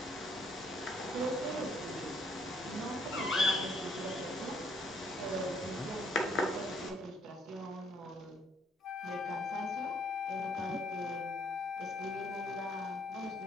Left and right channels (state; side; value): normal; both; correlation 0.67